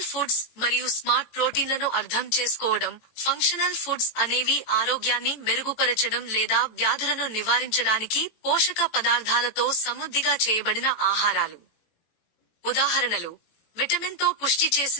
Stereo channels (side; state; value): right; late; 19 ms